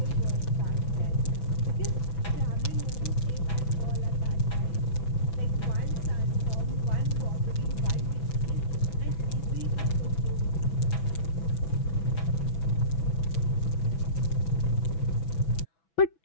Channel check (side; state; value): right; late; 6.1 ms